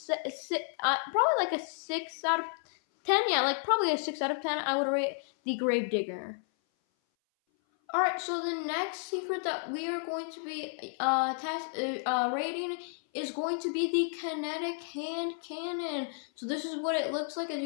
out of 10. Yeah, like probably a 6 out of 10. I would rate the Grave Digger. Alright, so the next secret that we are going to be rating is going to be the Kinetic Hand Cannon. So this is what it looks like, as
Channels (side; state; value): right; silent; 57 dB below the other